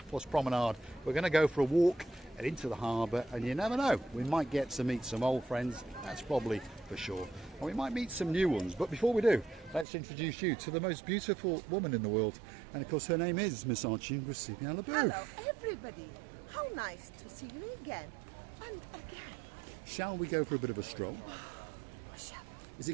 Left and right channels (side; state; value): left; drops out; at 9.9 s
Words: promenade. We're going to go for a walk and into the harbour, and you never know, we might get to meet some old friends, that's probably for sure. And we might meet some new ones, but before we do, let's introduce you to the most beautiful woman in the world. And of course, her name is Miss Archie Hello, everybody. How nice to see you again and again. Shall we go for a bit of a stroll? Is